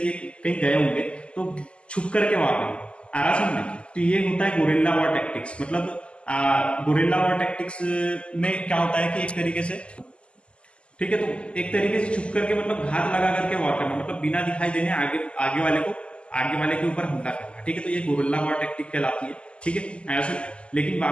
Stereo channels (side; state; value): right; late; 0.054 ms